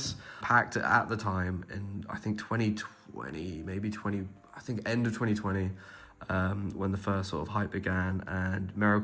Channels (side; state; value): both; identical; correlation 1.00